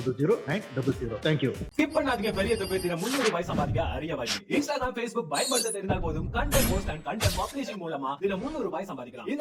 Thank you. Skip பண்ணாதீங்க. பெரிய தொகையில 300 ரூபாய் சம்பாதிக்க அரிய வழி. Instagram, Facebook பயன்படுத்த தெரிந்தால் போதும். Content post and content publishing மூலமா தினம் 300 ரூபாய் சம்பாதிக்கலாம்.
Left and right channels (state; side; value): identical; both; correlation 1.00